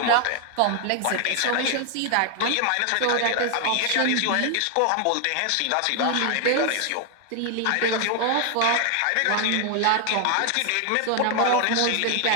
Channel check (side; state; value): both; different; correlation 0.00